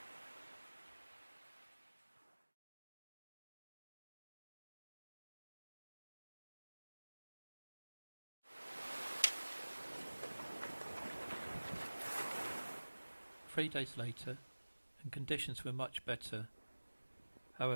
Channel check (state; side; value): inverted; both; correlation -1.00